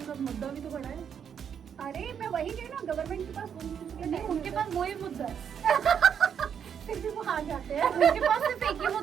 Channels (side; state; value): left; quieter; 7.9 dB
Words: का मुद्दा भी तो बड़ा है। अरे मैं वही कह ना, गवर्नमेंट के पास उनके पास वही मुद्दा है। फिर भी वो हार जाते हैं। उनके पास सिर्फ एक ही